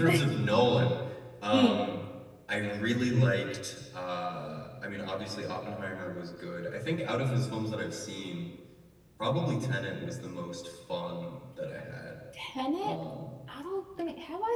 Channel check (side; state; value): both; identical; correlation 1.00